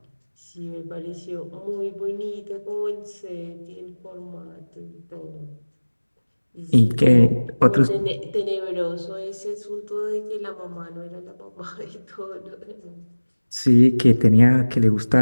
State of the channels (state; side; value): inverted; both; correlation -1.00